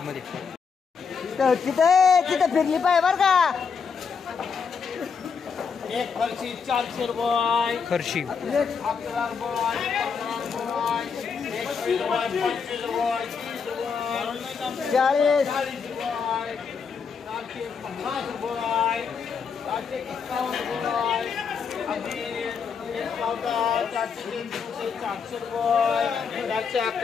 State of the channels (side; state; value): right; quieter; 5.9 dB